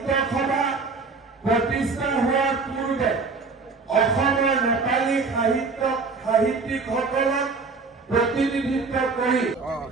সভা প্ৰতিষ্ঠা হোৱাৰ পূৰ্বে অসমৰ নেপালী সাহিত্যিকসকলক प्रतिनिधित्व करी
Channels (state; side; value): quieter; left; 4.3 dB